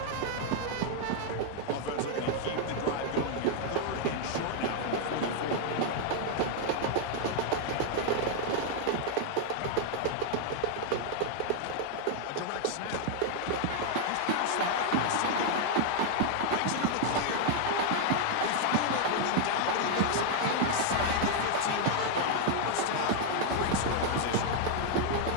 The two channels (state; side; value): different; both; correlation 0.00